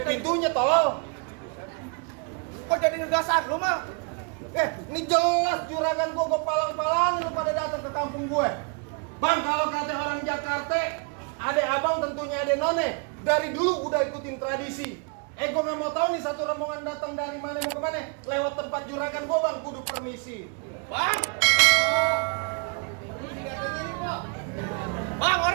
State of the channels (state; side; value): quieter; left; 35.7 dB